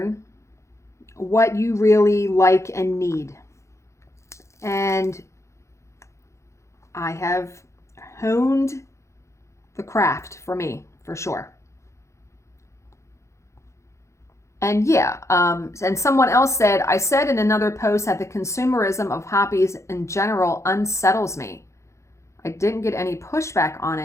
what you really like and need. And I have honed the craft for me, for sure. And yeah, and someone else said, I said in another post that the consumerism of hobbies in general unsettles me. I didn't get any pushback on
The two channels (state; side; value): late; right; 0.14 ms